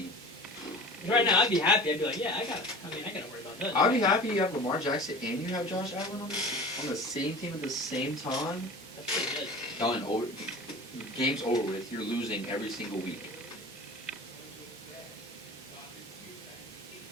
Right now, I'd be happy. I'd be like, yeah, I gotta worry about that. I'd be happy you have Lamar Jackson and you have Josh Allen on the same team at the same time. That's pretty good. Done. Over. Game's over with. You're losing every single week.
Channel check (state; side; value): normal; both; correlation 0.38